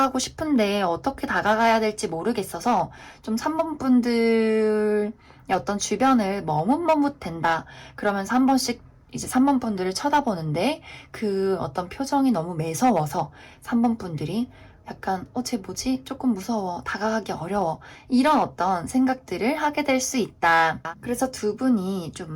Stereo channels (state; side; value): identical; both; correlation 1.00